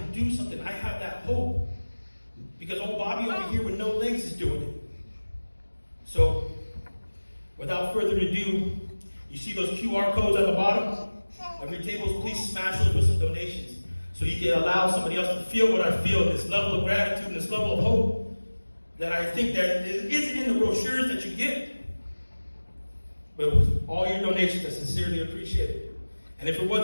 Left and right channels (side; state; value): both; inverted; correlation -1.00